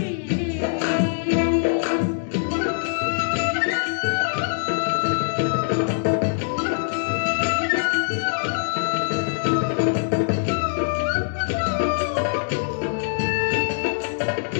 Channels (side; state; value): right; silent; 63 dB below the other